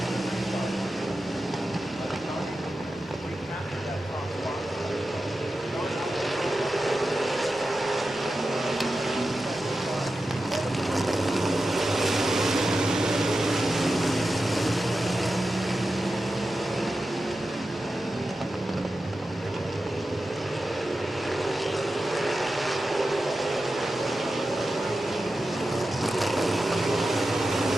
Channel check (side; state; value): both; normal; correlation 0.92